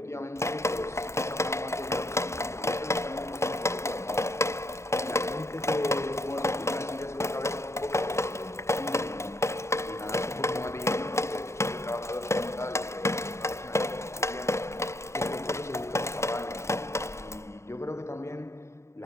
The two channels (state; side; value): late; right; 0.14 ms